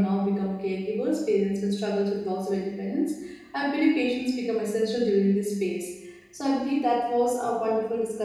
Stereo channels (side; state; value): both; identical; correlation 1.00